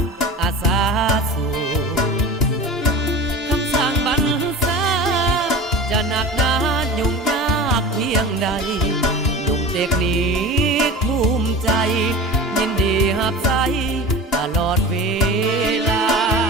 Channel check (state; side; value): normal; both; correlation 0.33